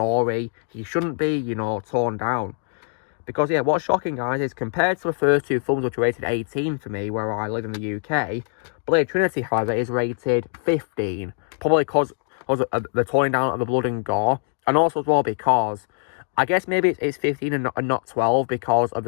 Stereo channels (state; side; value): silent; right; 63 dB below the other